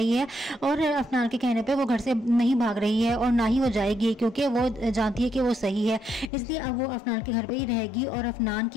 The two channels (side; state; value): right; drops out; at 6.3 s